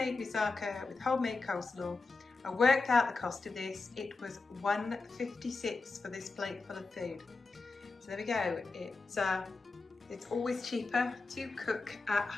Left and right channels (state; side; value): quieter; right; 3.9 dB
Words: moussaka with homemade coleslaw. I worked out the cost of this, it was $1.56 for this plate full of food. So there we go, it's always cheaper to cook at